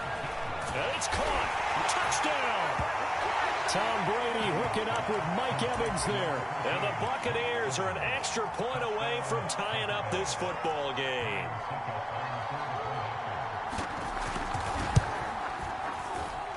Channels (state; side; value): identical; both; correlation 1.00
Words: And it's caught. Touchdown. Tom Brady hooking up with Mike Evans there. And the Buccaneers are an extra point away from tying up this football game.